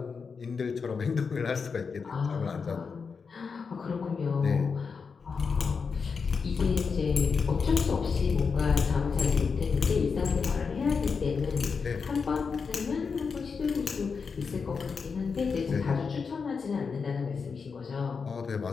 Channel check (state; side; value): quieter; right; 5.4 dB